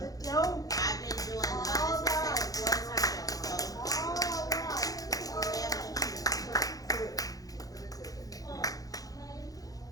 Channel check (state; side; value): late; right; 0.17 ms